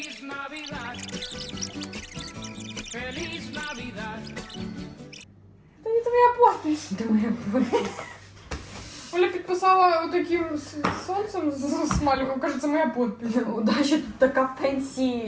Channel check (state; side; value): identical; both; correlation 1.00